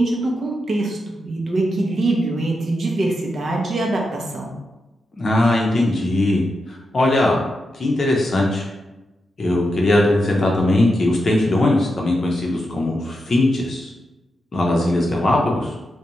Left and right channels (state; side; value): normal; both; correlation 0.87